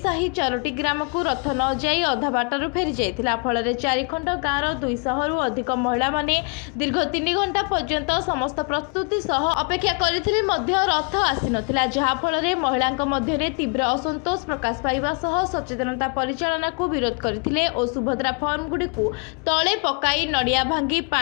4टी ग्राम को रथ न जाई अधा बाटर फेरी जाइथिला। फल चारिखंड गाँव 200 रु अधिक महिला माने दीर्घ 3 घंटा पर्यंत समस्त प्रस्तुति सह अपेक्षा करथिले मध्य रथ आसी नथिला, जहा फल महिला मध्य तीव्र असंतोष प्रकाश पाइबा सह सचेतनता परिचालना को विरोध करथिले और सुभद्रा फॉर्म गुडी को तळे पकाई नडिया भांगी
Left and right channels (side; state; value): right; quieter; 35.5 dB